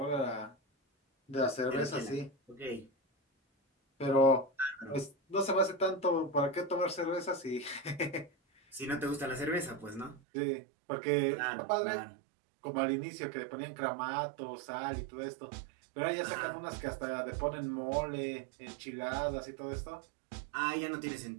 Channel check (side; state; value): left; drops out; at 10.2 s